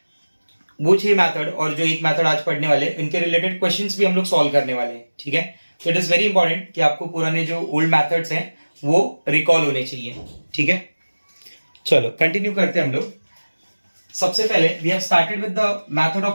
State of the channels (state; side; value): inverted; both; correlation -1.00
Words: वो 6 मेथड और जो एक मेथड आज पढ़ने वाले इनके रिलेटेड क्वेश्चंस भी हम लोग सॉल्व करने वाले हैं. ठीक है, तो इट इज वेरी इंपॉर्टेंट कि आपको पुराने जो ओल्ड मेथड्स हैं वो रिकॉल होने चाहिए. ठीक है, चलो कंटिन्यू करते हैं हम लोग. सबसे पहले we have started with the method